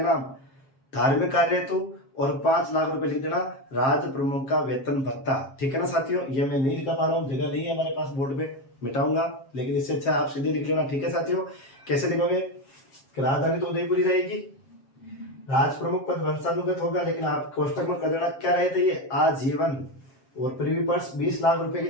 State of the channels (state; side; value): late; right; 7.4 ms